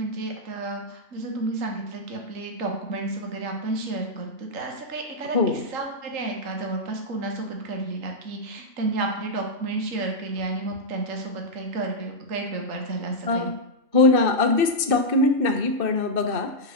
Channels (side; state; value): left; late; 2.7 ms